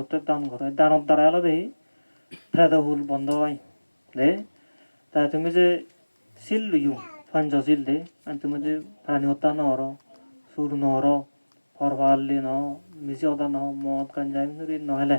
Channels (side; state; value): both; inverted; correlation -1.00